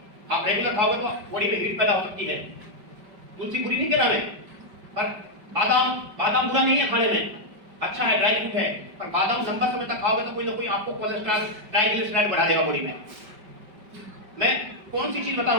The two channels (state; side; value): late; left; 5.2 ms